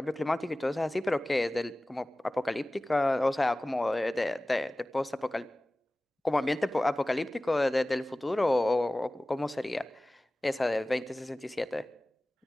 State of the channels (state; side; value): normal; both; correlation 0.98